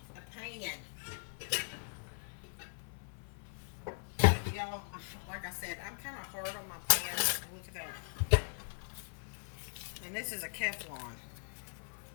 a pan. Y'all, like I said, I'm kind of hard on my pan. Look at that. And this is a Teflon.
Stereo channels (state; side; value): silent; right; 52 dB below the other